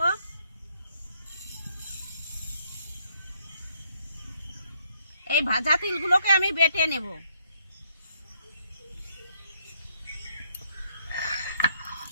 এই ভাজা তিলগুলোকে আমি বেটে নেব।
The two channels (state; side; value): inverted; both; correlation -0.72